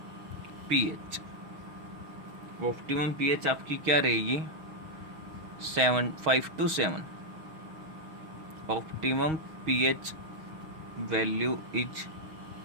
pH. Optimum pH आपकी क्या रहेगी, 5 to 7। Optimum pH value is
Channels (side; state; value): left; late; 6.4 ms